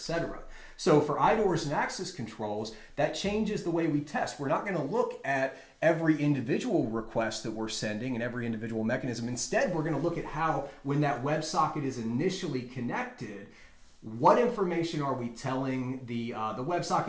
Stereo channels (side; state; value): both; identical; correlation 1.00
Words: So for IDORs and access controls, that changes the way we test. We're not going to look at every individual request that we're sending and every individual mechanism. Instead, we're going to look at how, when that WebSocket is initially connected, what information are we telling the